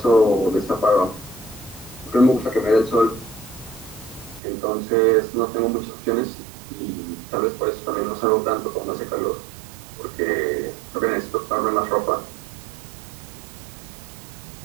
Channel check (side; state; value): left; drops out; at 4.4 s